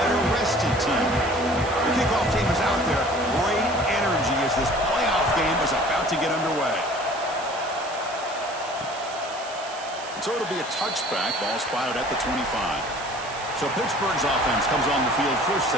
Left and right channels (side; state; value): right; noise; hiss, 14 dB below the sound